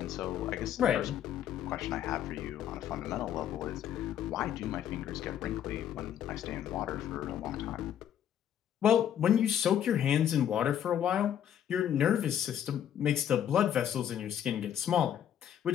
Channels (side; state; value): right; quieter; 10.0 dB